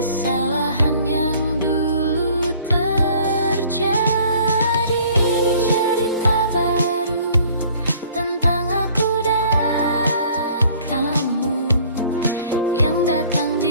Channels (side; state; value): both; inverted; correlation -0.54